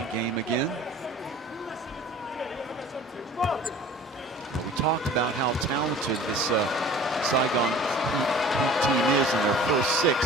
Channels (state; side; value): normal; both; correlation 0.45